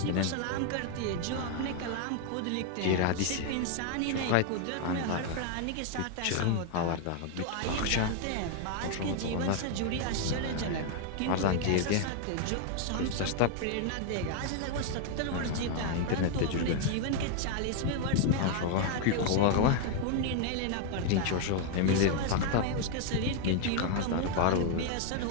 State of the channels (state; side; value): different; both; correlation 0.00